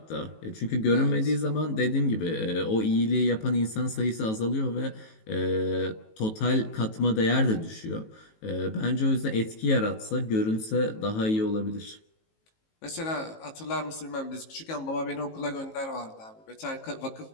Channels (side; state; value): right; late; 18 ms